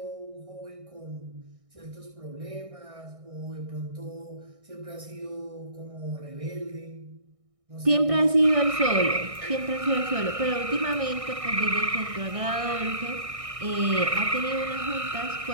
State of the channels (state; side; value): late; left; 1.6 ms